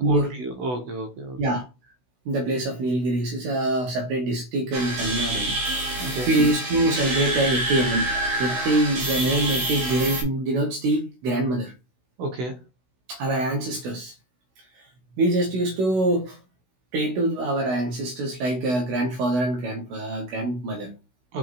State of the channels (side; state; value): left; late; 16 ms